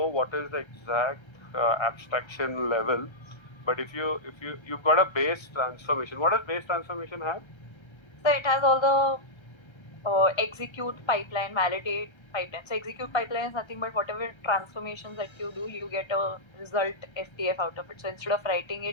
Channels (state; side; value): late; right; 1.3 ms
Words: what is the exact abstraction level, but if you've got a base transformation, what does base transformation have? So it has all the execute pipeline, validate pipeline. So execute pipeline is nothing but whatever transformations that you do, you get a result FTF out of it. So instead of writing